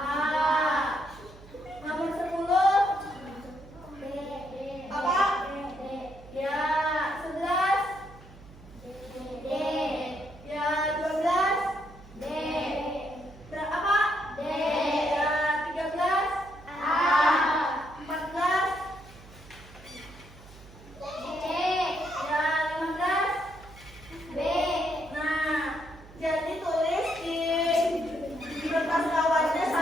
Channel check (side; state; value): right; noise; hum, 20 dB below the sound